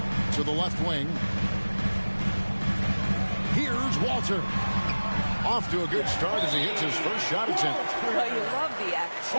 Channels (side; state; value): both; inverted; correlation -1.00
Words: To the left wing. Here's Walter. Off to a good start as he hits his first shot attempt. Well, you love the